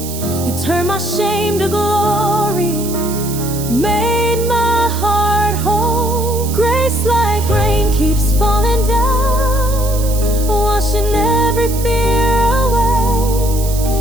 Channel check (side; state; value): right; noise; hiss, 10 dB below the sound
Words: You turned my shame to glory, made my heart whole. Grace like rain keeps falling down, washing every fear away.